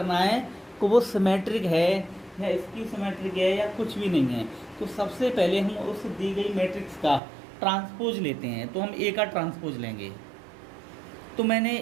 है कि वो सिमेट्रिक है या स्क्यू सिमेट्रिक है या कुछ भी नहीं है, तो सबसे पहले हम उस दी गई मैट्रिक्स का ट्रांसपोज लेते हैं। तो हम ए का ट्रांसपोज लेंगे। तो मैंने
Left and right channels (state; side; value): drops out; left; at 7.2 s